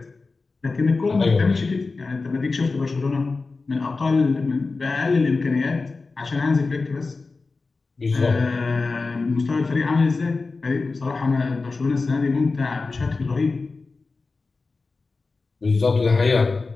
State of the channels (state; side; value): quieter; right; 3.9 dB